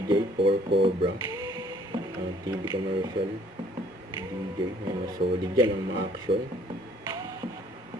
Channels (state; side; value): normal; both; correlation 0.59